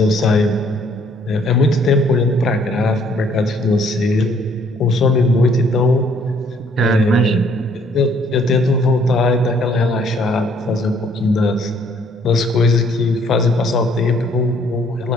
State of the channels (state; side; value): normal; both; correlation 0.63